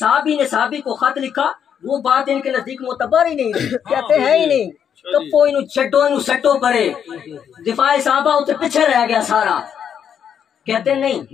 نے صحابی کو خط لکھا، وہ بات ان کے نزدیک معتبر ہی نہیں، کہتے ہیں ہی نہیں، کپو انہوں چھٹو انہوں سٹو پڑے، دفاع صحابہ اسے پیچھے رہ گیا سارا، کہتے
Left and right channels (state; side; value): quieter; right; 8.3 dB